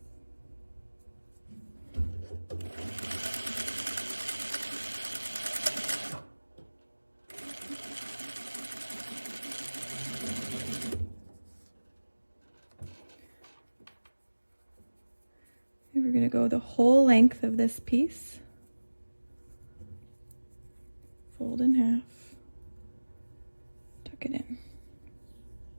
We're going to go the whole length of this piece. Fold in half. Tuck it in.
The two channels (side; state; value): both; inverted; correlation -1.00